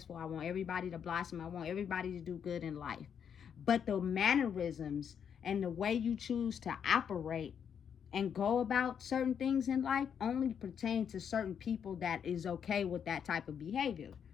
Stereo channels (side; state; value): right; quieter; 7.8 dB